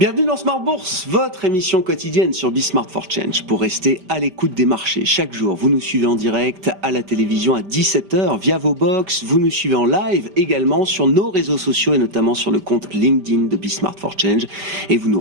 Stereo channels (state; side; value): late; left; 5.0 ms